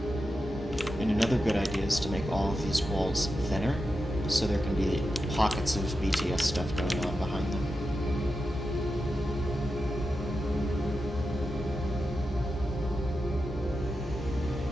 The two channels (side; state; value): both; normal; correlation 0.90